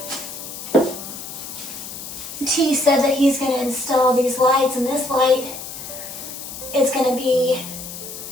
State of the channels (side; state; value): left; noise; hiss, 10 dB below the sound